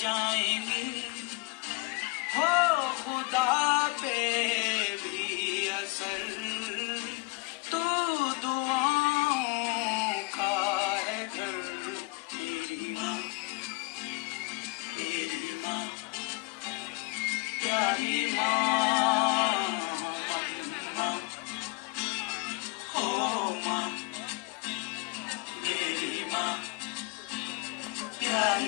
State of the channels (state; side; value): quieter; right; 26.8 dB